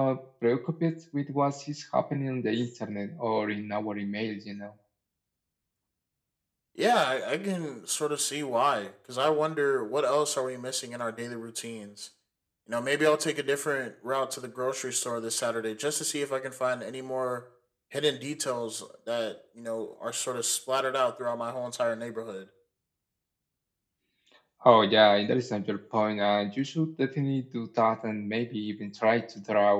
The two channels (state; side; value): identical; both; correlation 1.00